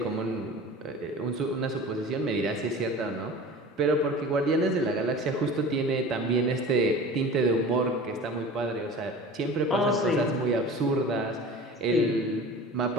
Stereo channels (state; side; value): normal; both; correlation 0.38